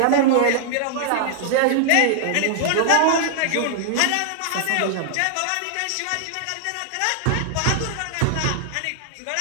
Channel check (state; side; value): different; both; correlation -0.01